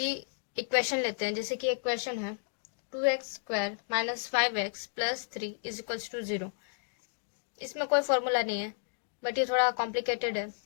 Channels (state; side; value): silent; right; digital silence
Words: इक्वेशन लेते हैं, जैसे कि एक क्वेश्चन है 2x² - 5x + 3 = 0। इसमें कोई फॉर्मूला नहीं है, बट ये थोड़ा कॉम्प्लिकेटेड है,